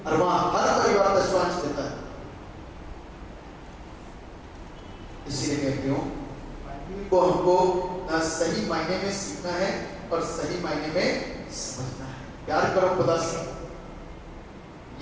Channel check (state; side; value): identical; both; correlation 1.00